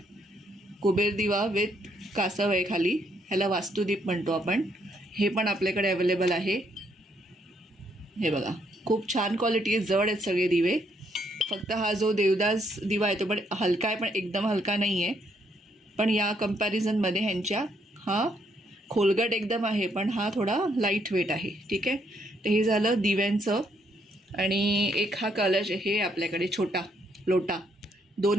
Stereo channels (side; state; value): both; normal; correlation 0.72